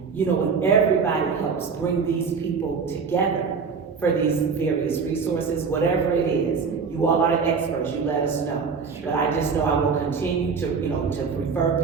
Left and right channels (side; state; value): left; quieter; 5.4 dB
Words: You know, when everybody helps bring these people together for these various resources, whatever it is, you all are the experts, you let us know. But I just know I will continue to, you know, to refer